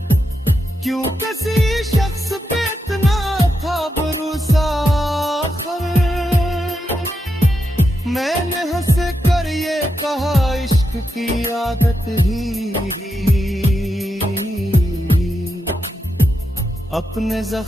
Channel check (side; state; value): both; normal; correlation 0.86